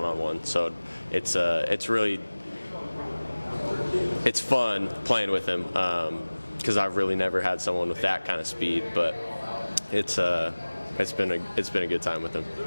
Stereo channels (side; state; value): both; inverted; correlation -1.00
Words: So it's fun playing with him, because I've really never had someone with that kind of speed. But it's been a good time with him.